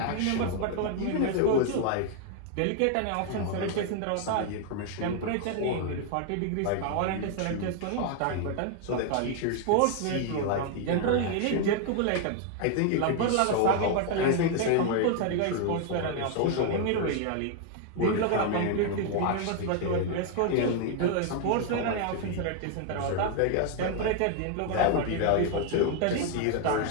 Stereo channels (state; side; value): different; both; correlation 0.00